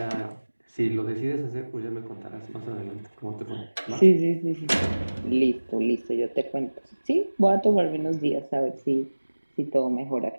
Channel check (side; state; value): both; inverted; correlation -1.00